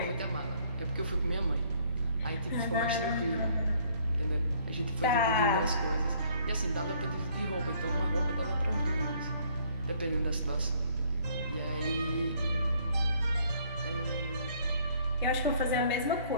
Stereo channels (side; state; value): both; inverted; correlation -0.62